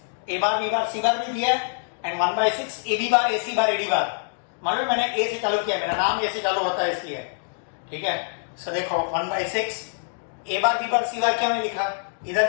A bar B bar C बार भी दिया है and 1/6 AB bar AC bar AD बार. मालूम मैंने A से चालू किया, मेरा नाम A से चालू होता है इसलिए, ठीक है. सो देखो 1/6 A bar B bar C बार क्यों नहीं लिखा?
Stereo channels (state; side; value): silent; right; digital silence